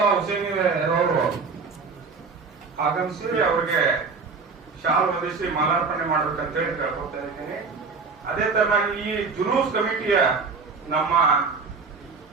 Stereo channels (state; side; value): quieter; left; 4.7 dB